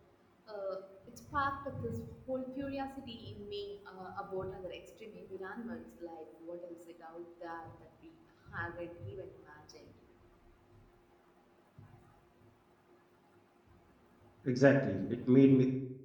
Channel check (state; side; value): identical; both; correlation 1.00